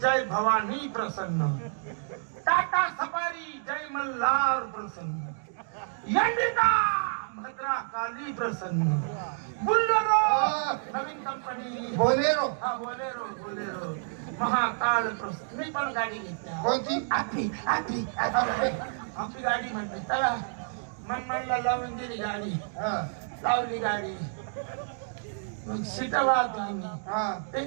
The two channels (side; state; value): left; silent; digital silence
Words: जय भवानी प्रसन्न टाटा सफारी जय मल्हार प्रसन्न इंडिका भद्रा काली प्रसन्न बुल्लरो नवीन कंपनी बोलेरो हा बोलेरो बोलेरो महाकाल प्रसन्न मी पण गाडी घेतली कोणती आपली गाडी म्हणते चला मनला लावून दिली गाडी हा लावली गाडी मग सीटा वाहतो आम्ही हा ते